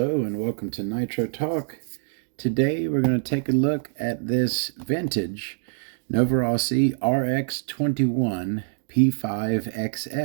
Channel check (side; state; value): left; silent; digital silence